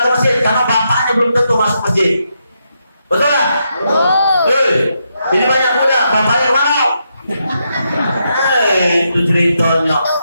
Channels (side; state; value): both; inverted; correlation -0.82